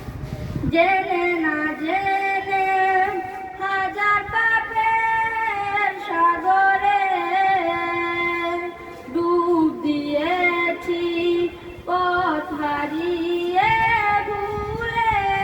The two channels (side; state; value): both; identical; correlation 1.00